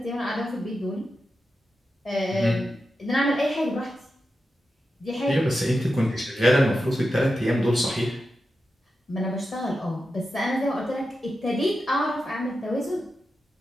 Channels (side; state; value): both; normal; correlation 0.90